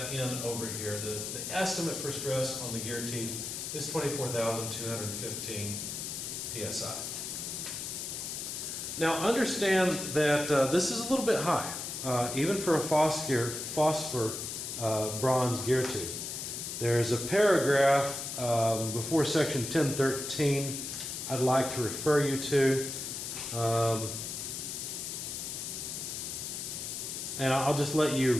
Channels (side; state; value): left; noise; hiss, 5 dB below the sound